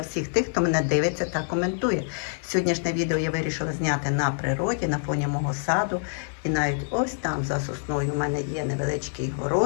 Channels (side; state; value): right; silent; digital silence